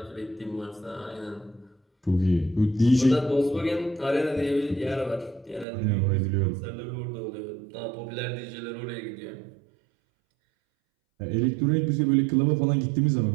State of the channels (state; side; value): drops out; left; at 5.7 s